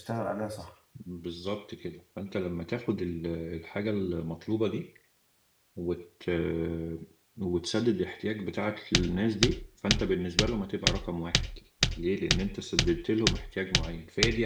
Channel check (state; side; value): identical; both; correlation 1.00